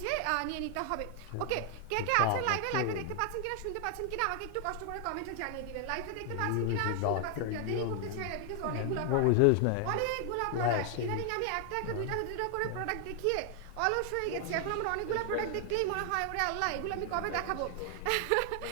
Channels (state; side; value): different; both; correlation 0.00